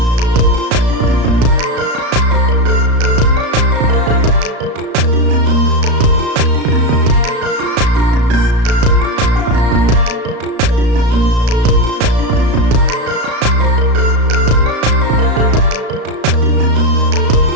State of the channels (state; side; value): late; left; 34 ms